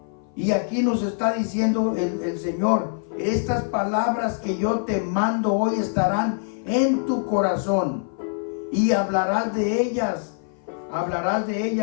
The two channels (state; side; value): silent; right; 58 dB below the other